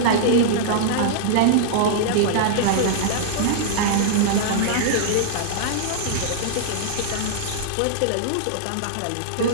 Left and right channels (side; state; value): both; different; correlation -0.01